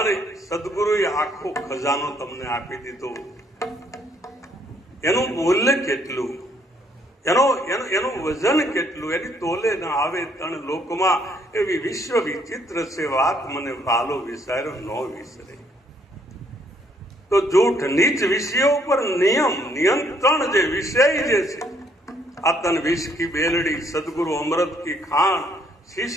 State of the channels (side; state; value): both; normal; correlation 0.68